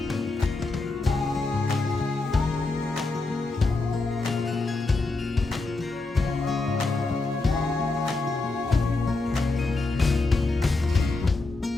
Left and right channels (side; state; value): right; quieter; 3.4 dB